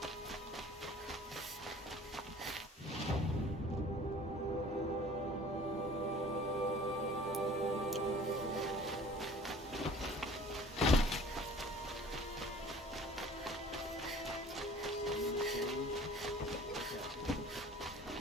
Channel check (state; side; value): normal; both; correlation 0.48